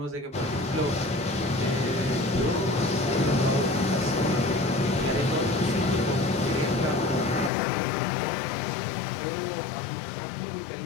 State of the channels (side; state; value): right; drops out; at 7.5 s